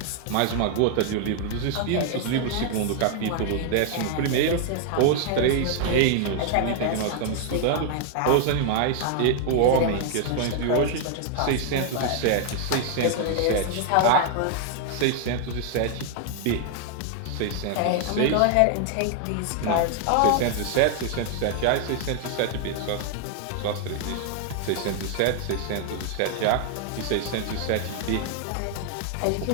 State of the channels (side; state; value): both; different; correlation 0.00